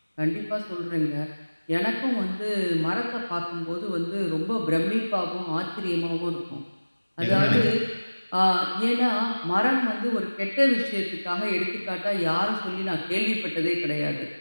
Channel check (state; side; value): inverted; both; correlation -1.00